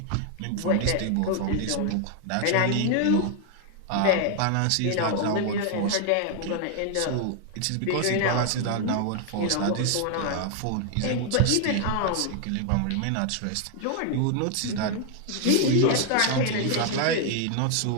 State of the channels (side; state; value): both; different; correlation 0.00